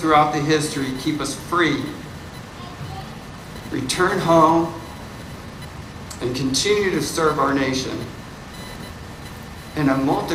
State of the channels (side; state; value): both; identical; correlation 1.00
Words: the history keep us free, return home, and continue to serve our nation in a